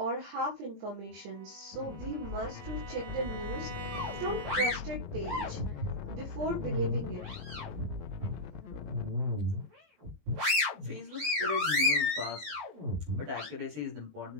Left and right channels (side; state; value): left; late; 20 ms